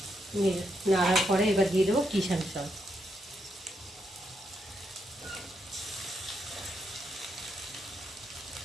নাড়ার পরে এবার দিয়ে দেবো কিষান সস।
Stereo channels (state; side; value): normal; both; correlation 0.80